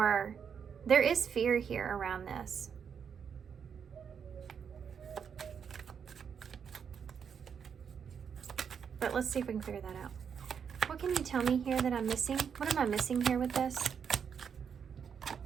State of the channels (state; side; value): quieter; left; 7.1 dB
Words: there is fear here around this. But let's see if we can figure that out. What can you tell me here that I'm missing? What am I missing here with this?